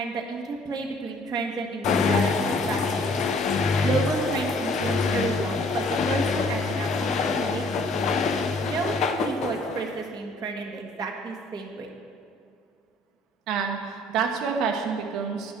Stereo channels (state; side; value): normal; both; correlation 0.58